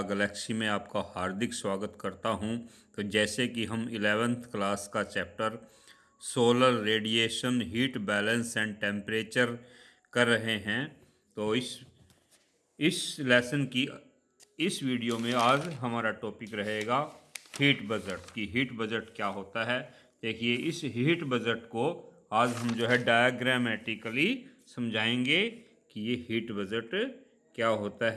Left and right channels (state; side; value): identical; both; correlation 1.00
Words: Galaxy में आपका हार्दिक स्वागत करता हूं। तो जैसे कि हम 11th क्लास का chapter solar radiation, heat balance and temperature कर रहे हैं, तो इस लेसन की इस वीडियो में आज हमारा टॉपिक रहेगा हीट बजट की हीट बजट क्या होता है। देखिए, इस हीट बजट को आज हम जो है डायग्रामेटिकली समझाएंगे कि ये हीट बजट क्या होता